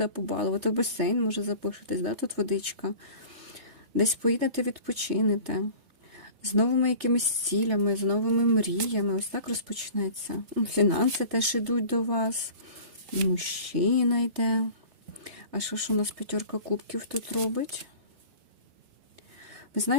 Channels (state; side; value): late; left; 3.3 ms